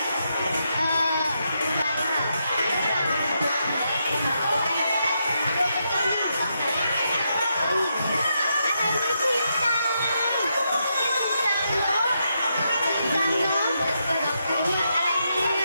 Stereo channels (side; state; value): both; inverted; correlation -0.82